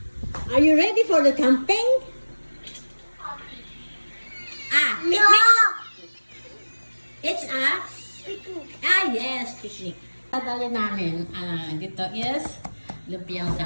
Are you ready for the camping? Picnic! It's a? Yes, picnic. Dadali namin, dito is lumpiang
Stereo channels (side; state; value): both; inverted; correlation -1.00